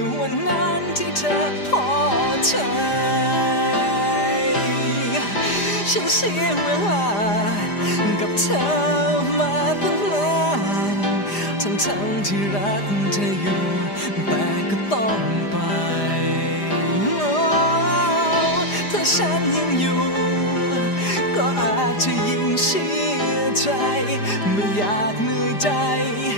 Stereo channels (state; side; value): late; right; 5.0 ms